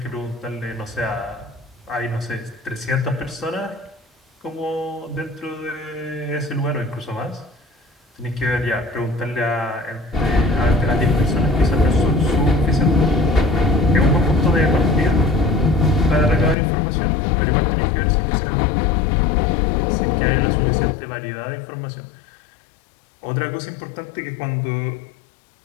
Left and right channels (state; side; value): drops out; right; at 16.6 s